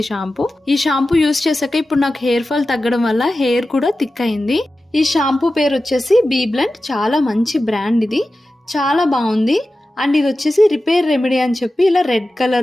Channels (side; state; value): both; normal; correlation 0.94